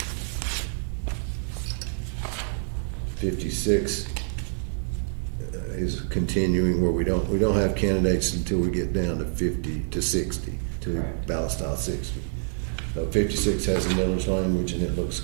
56 is continuing where we don't have candidates until we get down to 50 to 60 to Correct. ballot style 60. So 56 has a millage language and it looks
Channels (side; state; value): left; silent; 60 dB below the other